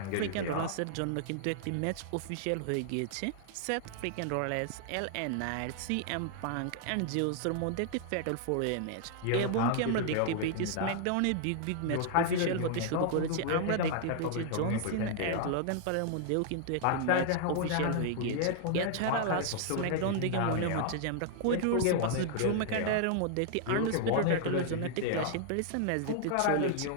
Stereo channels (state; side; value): different; both; correlation 0.00